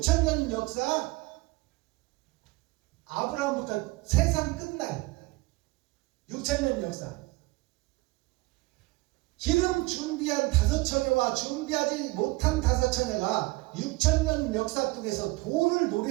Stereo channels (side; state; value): left; quieter; 22.4 dB